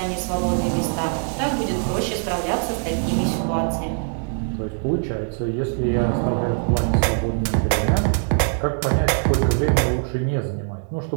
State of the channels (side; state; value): left; silent; 56 dB below the other